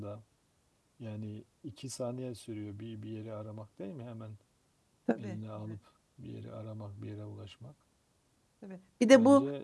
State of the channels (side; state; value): both; identical; correlation 1.00